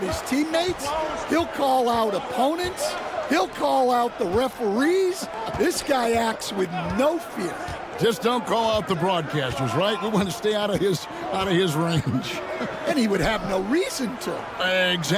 his teammates. He'll call out opponents. He'll call out the referees. This guy acts with no fear. Just don't call out the broadcasters, right? We want to stay out of his range. And he would have no reason to.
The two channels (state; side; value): identical; both; correlation 1.00